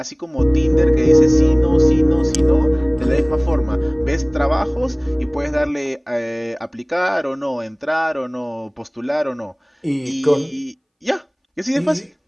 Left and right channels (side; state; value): both; identical; correlation 1.00